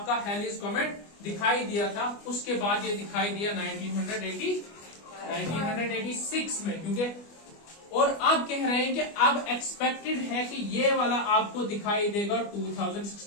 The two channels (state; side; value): late; right; 25 ms